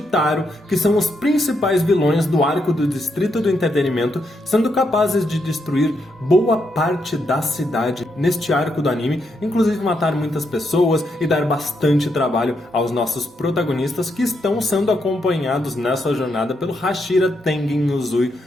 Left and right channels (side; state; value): both; normal; correlation 0.80